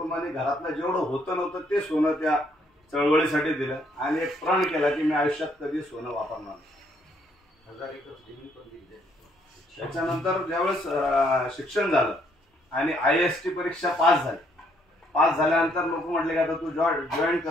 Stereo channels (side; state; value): both; normal; correlation 0.69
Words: घरातलं जेवढं होतं नव्हतं ते सोनं त्या चळवळीसाठी दिलं. आणि एक प्रण केला की मी आयुष्यात कधी सोनं वापरणार नाही. त्याच्यानंतर ज्यावेळेस शिक्षण झालं आणि IAST परीक्षा पास झाल्यानंतर लोक म्हटले की आता तू जॉईन